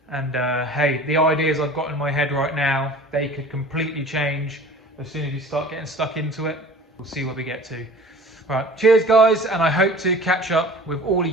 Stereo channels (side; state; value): both; normal; correlation 0.43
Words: And hey, the ideas I've got in my head right now, they could completely change as soon as you start getting stuck into it. We'll see where we get to. All right, cheers guys, and I hope to catch up with all of